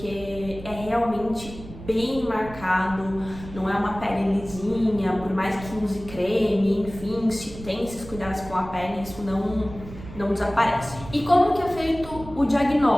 é realmente bem marcado, não é uma pele lisinha, por mais que use creme, enfim, se tem esses cuidados com a pele, isso não desaparece. E como que é feito o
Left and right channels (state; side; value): noise; right; rumble, 14 dB below the sound